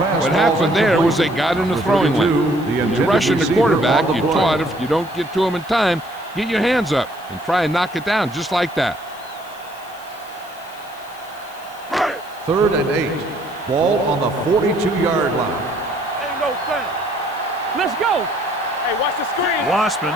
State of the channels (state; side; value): noise; left; hiss, 23 dB below the sound